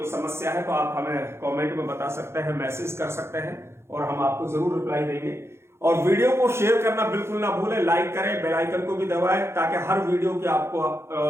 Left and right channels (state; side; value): late; left; 0.12 ms